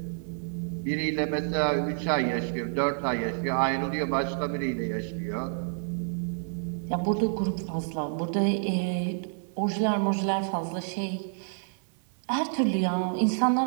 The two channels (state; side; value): silent; left; 59 dB below the other